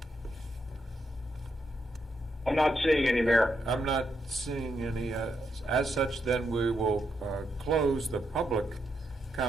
I'm not seeing any, Mayor. I'm not seeing any. As such, then we will close the public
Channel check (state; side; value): normal; both; correlation 0.81